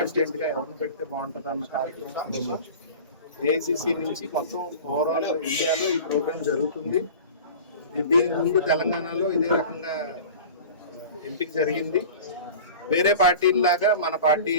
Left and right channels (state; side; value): inverted; both; correlation -0.37